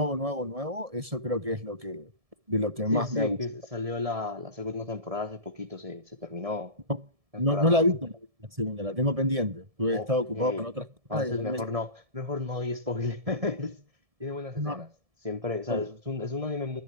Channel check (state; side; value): late; left; 1.7 ms